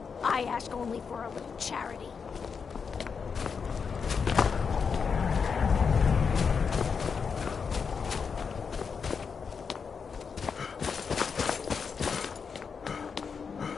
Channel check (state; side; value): quieter; right; 5.9 dB